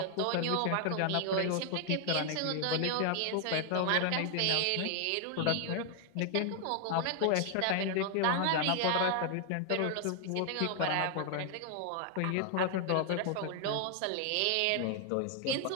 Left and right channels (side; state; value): both; different; correlation 0.00